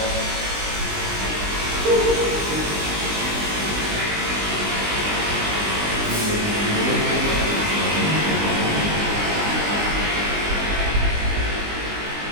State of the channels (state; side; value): late; left; 20 ms